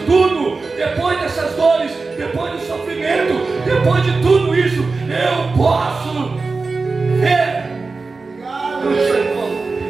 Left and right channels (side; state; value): left; quieter; 4.0 dB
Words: tudo, depois dessas dores, depois do sofrimento, depois de tudo isso, eu posso ver o Senhor.